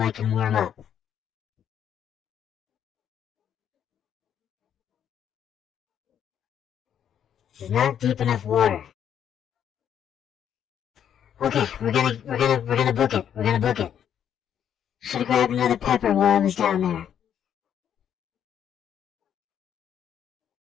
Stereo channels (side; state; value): right; quieter; 9.2 dB